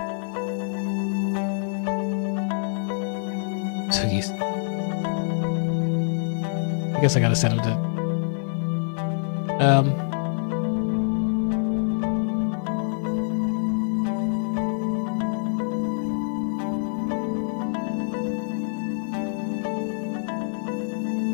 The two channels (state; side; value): silent; right; 61 dB below the other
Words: So he's. I guess I gotta send him to.